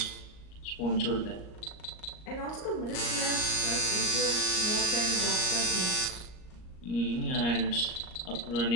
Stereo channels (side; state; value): right; late; 38 ms